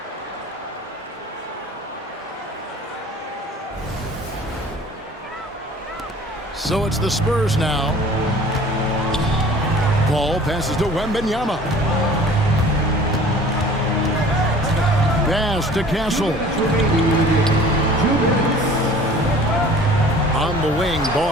So it's the Spurs now. Paul passes to Wembanyama. Pass to Castle. On the wing,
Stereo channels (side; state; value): both; normal; correlation 0.47